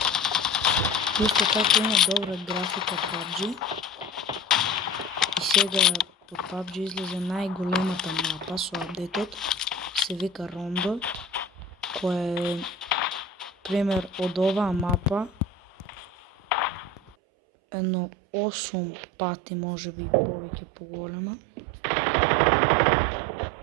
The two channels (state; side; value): drops out; left; at 17.2 s